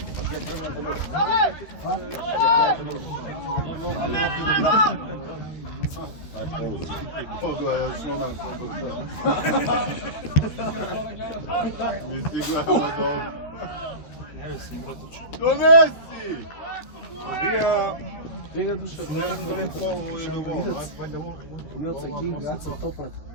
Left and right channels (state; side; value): late; right; 13 ms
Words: Pogledaj, osnovna mi si glava dobro. Ne mislim, brotoč. Donesi! Vega duše. Ne lepo ovo i drugo. Milca King, Gaca Topat.